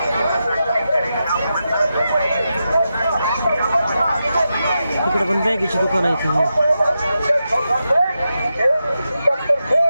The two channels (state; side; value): inverted; both; correlation -0.88